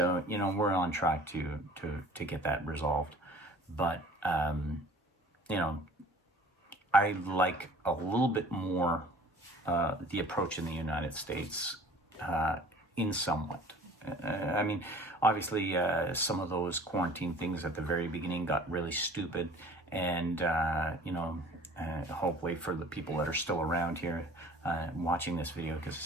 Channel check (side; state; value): both; normal; correlation 0.48